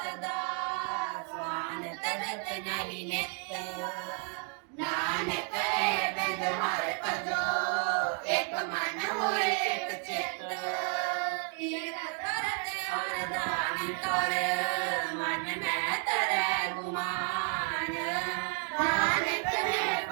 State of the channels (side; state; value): left; quieter; 38.0 dB